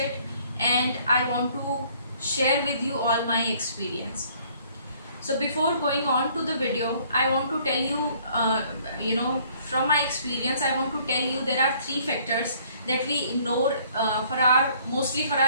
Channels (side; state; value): both; inverted; correlation -0.60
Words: and I want to share with you all my experience. So before going on to the video, I want to tell you, from my experience, I want to tell you there are three factors that we ignore mostly for